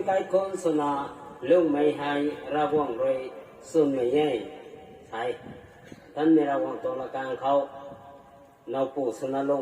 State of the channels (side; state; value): both; identical; correlation 1.00